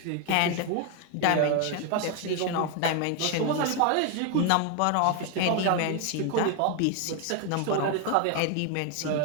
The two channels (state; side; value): different; both; correlation 0.01